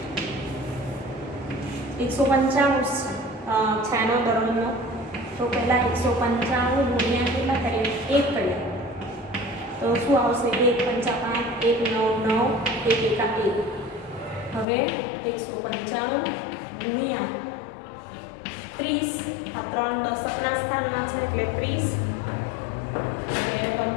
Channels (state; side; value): drops out; right; at 14.7 s